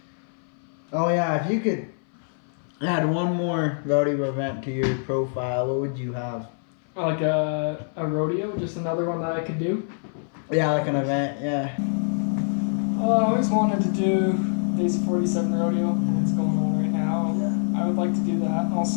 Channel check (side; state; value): right; silent; 59 dB below the other